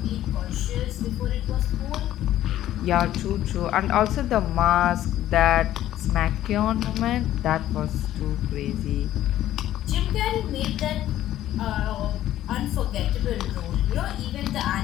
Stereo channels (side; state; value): right; quieter; 13.0 dB